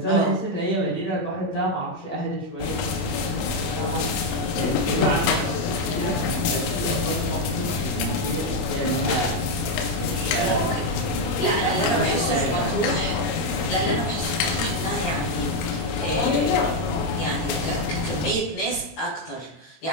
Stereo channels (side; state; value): right; late; 24 ms